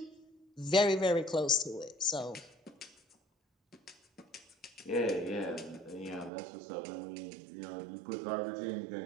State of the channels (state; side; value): drops out; left; at 6.3 s